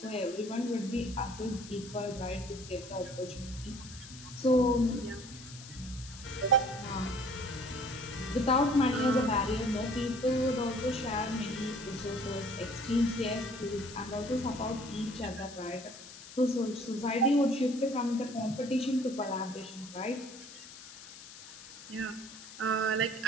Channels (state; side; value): noise; left; hiss, 15 dB below the sound